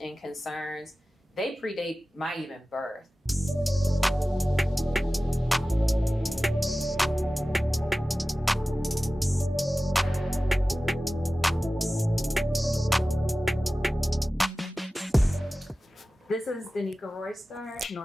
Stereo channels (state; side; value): normal; both; correlation 0.96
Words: concerns, they predate my even birth. This is Danica Royster,